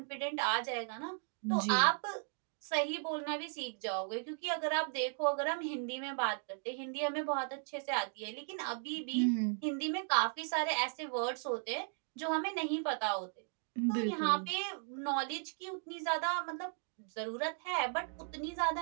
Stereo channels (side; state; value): left; silent; 53 dB below the other